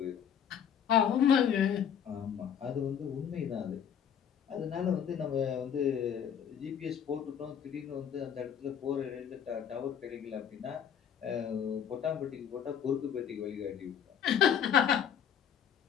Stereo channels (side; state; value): right; quieter; 8.5 dB